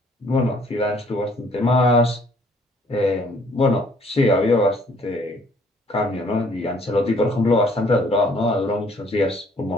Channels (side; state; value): both; normal; correlation 0.61